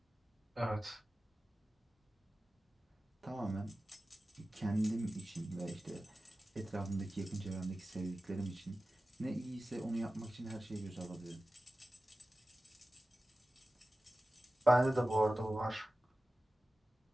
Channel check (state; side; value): normal; both; correlation 0.95